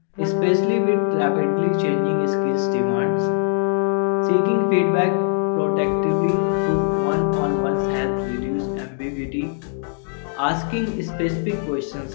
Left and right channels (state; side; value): silent; right; digital silence